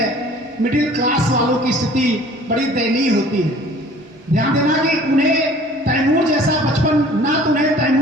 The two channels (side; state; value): both; normal; correlation 0.50